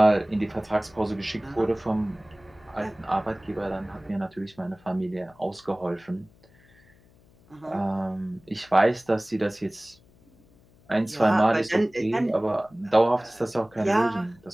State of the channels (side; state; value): left; noise; hum, 29 dB below the sound